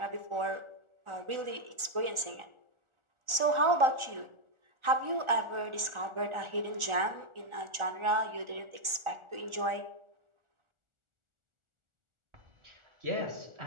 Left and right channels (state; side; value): late; left; 1.4 ms